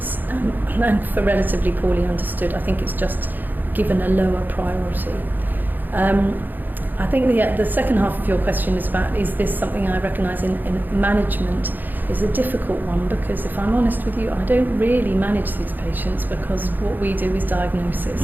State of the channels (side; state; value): left; late; 0.088 ms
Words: and for relatively poorly understood, I think it's just given a lower priority. I think the second half of your question is about, is this something I recognise in management, is a difficult one, because if I'm honest with you, I don't really manage these patients, because what we do is